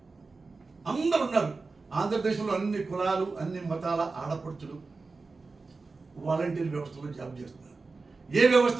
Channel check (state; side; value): quieter; left; 4.0 dB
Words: అందరు ఉన్నారు. ఆంధ్రప్రదేశ్లో అన్ని కులాలు అన్ని మతాల ఆడపడుచులు వాలంటీర్ వ్యవస్థలో జాబ్ చేస్తున్నారు. ఏ